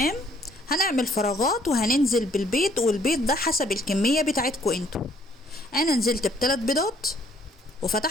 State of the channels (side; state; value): both; normal; correlation 0.63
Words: هنعمل فراغات وهننزل بالبيض، والبيض ده حسب الكمية بتاعتكم انتوا. انا نزلت ب3 بيضات